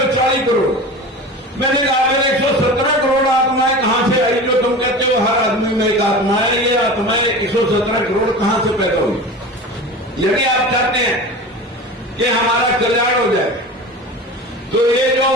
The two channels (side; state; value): both; normal; correlation 0.33